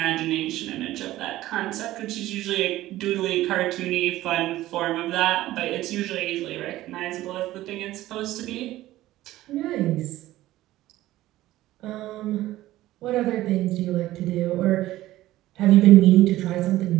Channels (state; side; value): quieter; left; 15.6 dB